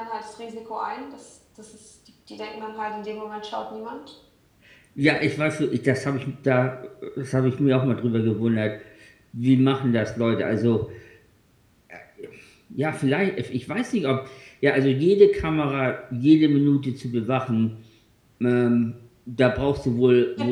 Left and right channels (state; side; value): identical; both; correlation 1.00